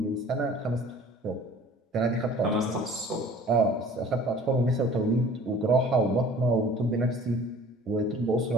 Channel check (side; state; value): both; normal; correlation 0.48